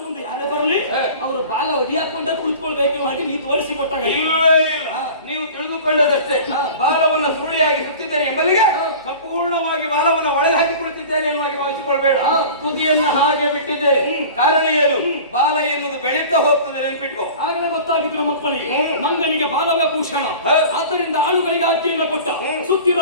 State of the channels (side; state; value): both; inverted; correlation -0.39